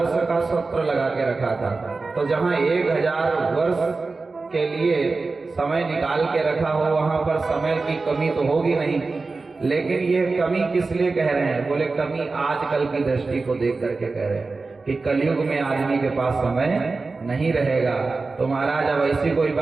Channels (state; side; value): quieter; left; 3.9 dB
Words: का सत्र लगा के रखा था। तो जहाँ 1000 वर्ष के लिए समय निकाल के रखा हो, वहां पर समय की कमी तो होगी नहीं। लेकिन ये कमी किस लिए कह रहे हैं? बोले कमी आजकल की दृष्टि को देख करके कह रहे हैं कि कलयुग में आदमी के पास समय नहीं रहेगा। तो महाराज अब ऐसी कोई